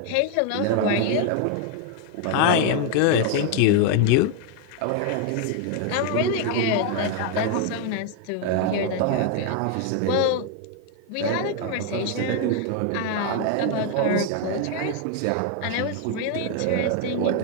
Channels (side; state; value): both; different; correlation 0.00